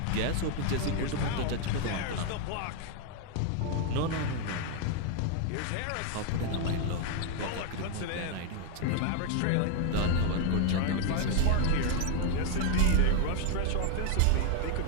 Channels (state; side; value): different; both; correlation 0.01